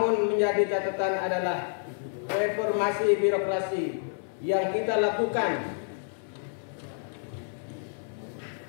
menjadi catatan adalah reformasi birokrasi yang kita lakukan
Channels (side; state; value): right; silent; 59 dB below the other